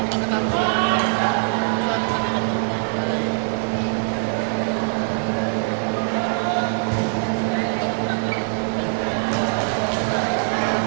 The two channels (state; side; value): silent; left; 64 dB below the other